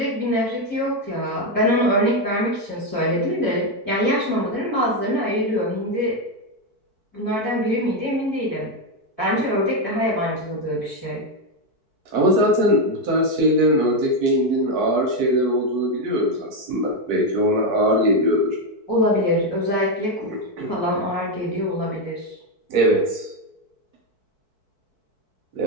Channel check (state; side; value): late; left; 4.6 ms